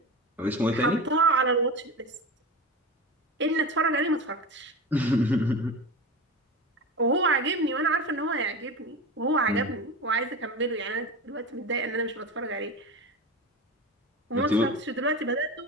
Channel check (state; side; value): normal; both; correlation 0.26